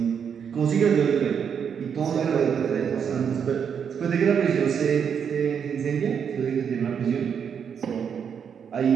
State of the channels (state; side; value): quieter; left; 7.4 dB